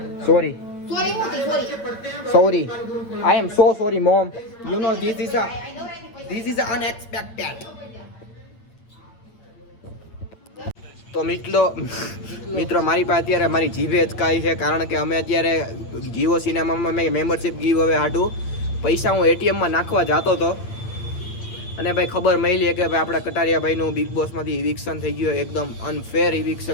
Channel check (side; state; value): right; late; 8.8 ms